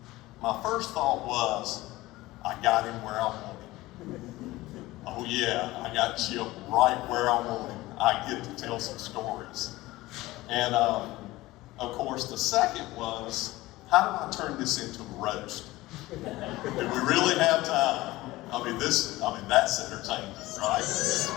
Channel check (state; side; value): quieter; right; 18.6 dB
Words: My first thought was, I got him where I want him. Oh yeah, I got Chip right where I want him. I get to tell some stories. And of course, the second was, how do I turn this into a roast? Do we really have time? I mean, that's entertainment,